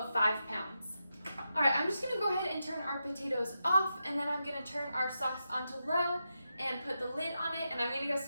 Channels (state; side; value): inverted; both; correlation -0.88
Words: 5 pounds. All right, I'm just gonna go ahead and turn our potatoes off, and then I'm gonna turn our sauce onto low and put the lid on it, and I'm gonna go